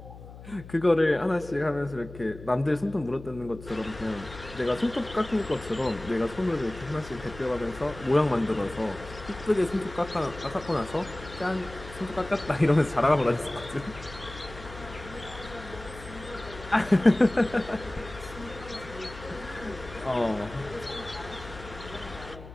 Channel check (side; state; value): left; noise; hum, 15 dB below the sound